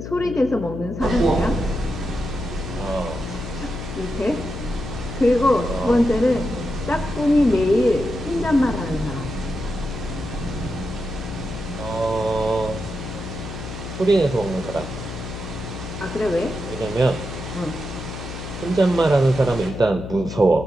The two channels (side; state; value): left; noise; hum, 9 dB below the sound